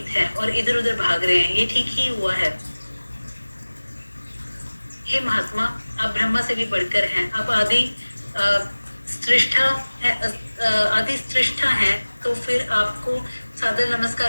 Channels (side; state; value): both; inverted; correlation -1.00